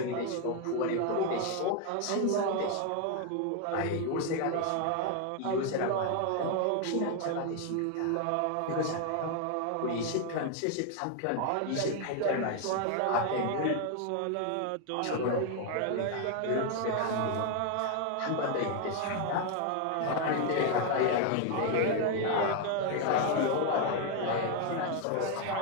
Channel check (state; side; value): different; both; correlation 0.01